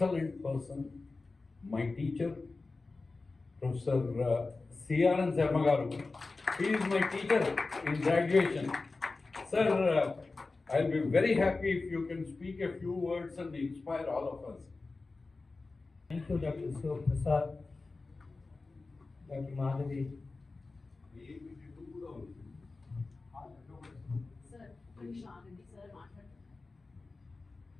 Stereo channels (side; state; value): right; quieter; 3.7 dB